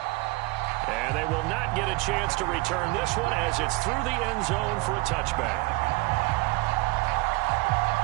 And they will not get a chance to return this one as it's through the end zone for a touchback.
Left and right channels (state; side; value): quieter; left; 23.2 dB